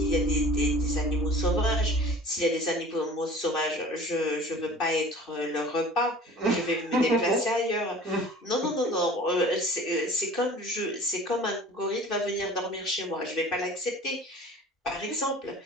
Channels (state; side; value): normal; both; correlation 0.44